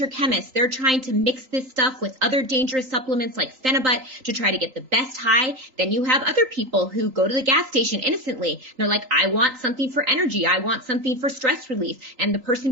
chemists. They're trying to mix this stuff with other dangerous supplements like Phenibut to try to get the best high. Then you have other people who go to the gas station innocently. They're like, I want something for energy. I want something for stress relief. And the person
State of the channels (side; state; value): left; late; 3.8 ms